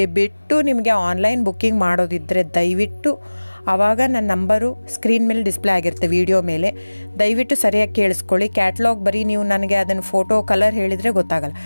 ಬಿಟ್ಟು ನಿಮಗೆ ಆನ್ಲೈನ್ ಬುಕ್ಕಿಂಗ್ ಮಾಡೋದಿದ್ದರೆ ದಯವಿಟ್ಟು ಆವಾಗ ನನ್ನ ನಂಬರು ಸ್ಕ್ರೀನ್ ಮೇಲೆ ಡಿಸ್ಪ್ಲೇ ಆಗಿರುತ್ತೆ, ವಿಡಿಯೋ ಮೇಲೆ. ದಯವಿಟ್ಟು ಸರಿಯಾಗಿ ಕೇಳಿಸ್ಕೊಳ್ಳಿ. ಕ್ಯಾಟ್ಲಾಗ್ ಬರೀ ನೀವು ನನಗೆ ಅದನ್ನು ಫೋಟೋ ಕಲರ್ ಹೇಳಿದರೆ ಗೊತ್ತಾಗಲ್ಲ.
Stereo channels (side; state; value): both; inverted; correlation -1.00